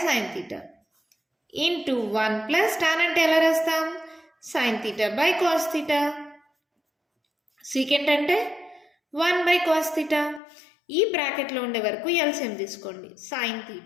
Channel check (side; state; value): right; drops out; at 10.4 s